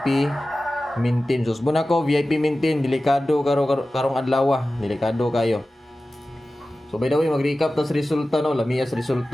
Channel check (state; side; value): normal; both; correlation 0.96